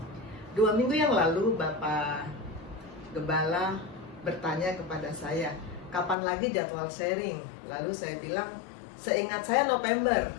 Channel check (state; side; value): drops out; right; at 6.2 s